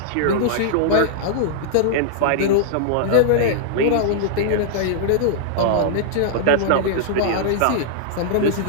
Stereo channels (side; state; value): both; different; correlation -0.01